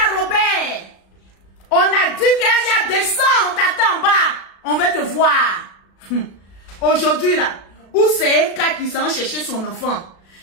Robert, on a dit qu'Aya descend, on t'attend en bas. On veut te voir. Aujourd'hui là, où c'est Eka qui s'en chercher son enfant?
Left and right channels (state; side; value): late; right; 36 ms